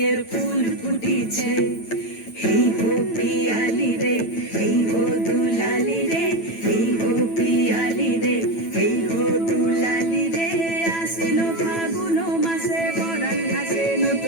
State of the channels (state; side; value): late; right; 9.0 ms